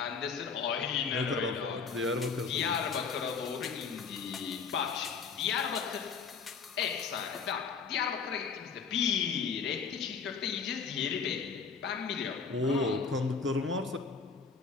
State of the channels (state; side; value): quieter; right; 5.5 dB